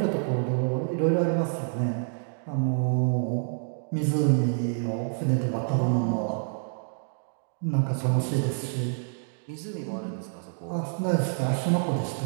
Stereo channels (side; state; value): left; silent; digital silence